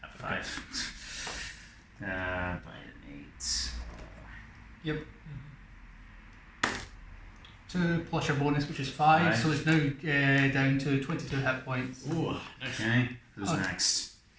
5. By an 8. Yep. 2 plus your bonus, which is 5, so it's now down to 22 hit points. Ooh, nice. Okay, who's Okay. next?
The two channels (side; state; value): both; identical; correlation 1.00